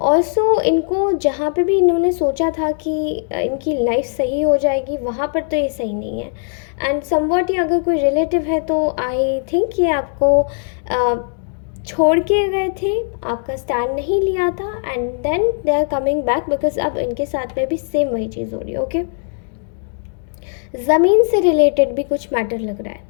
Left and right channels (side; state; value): right; silent; 64 dB below the other